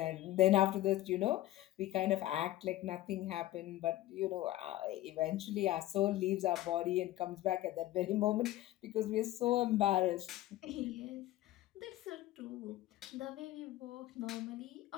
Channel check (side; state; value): right; quieter; 15.3 dB